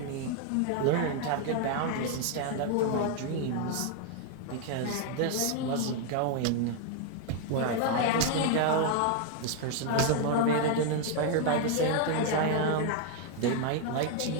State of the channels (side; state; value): both; different; correlation 0.00